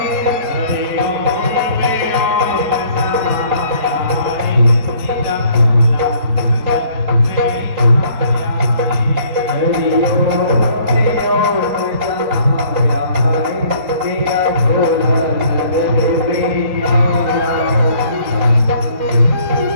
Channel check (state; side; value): late; left; 3.8 ms